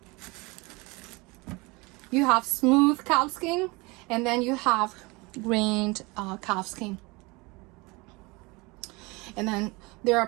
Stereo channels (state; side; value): quieter; left; 25.5 dB